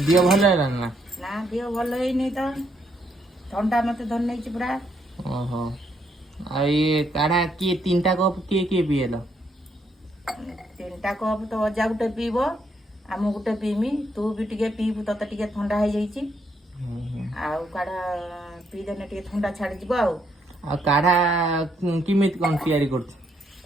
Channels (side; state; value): both; normal; correlation 0.74